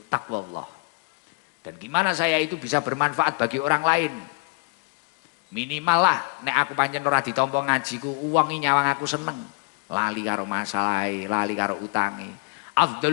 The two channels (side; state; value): right; quieter; 33.0 dB